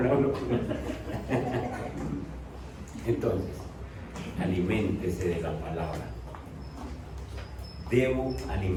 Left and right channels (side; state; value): both; identical; correlation 1.00